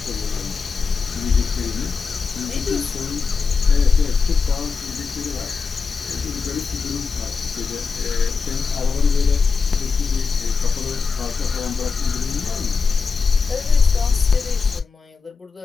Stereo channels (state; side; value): quieter; right; 4.9 dB